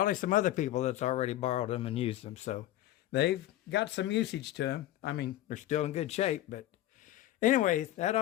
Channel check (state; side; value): quieter; right; 14.2 dB